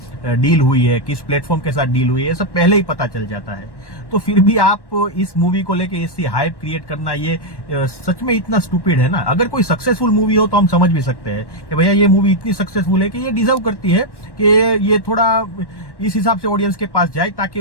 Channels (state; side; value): late; right; 1.1 ms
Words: डील हुई है, किस प्लेटफॉर्म के साथ डील हुई है, ये सब पहले ही पता चल जाता है। तो फिर भी आप इस मूवी को लेके ऐसी हाइप क्रिएट करना, ये सच में इतना स्टूपिड है ना। अगर कोई सक्सेसफुल मूवी हो तो हम समझ भी सकते हैं कि भैया ये मूवी इतनी सक्सेसफुल है कि ये डिजर्व करती है कि ये थोड़ा इस हिसाब से ऑडियंस के पास जाए ताकि